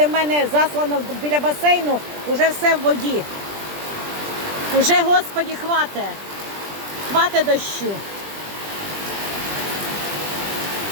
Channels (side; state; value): left; late; 20 ms